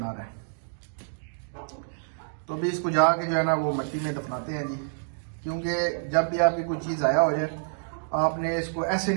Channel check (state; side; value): silent; left; digital silence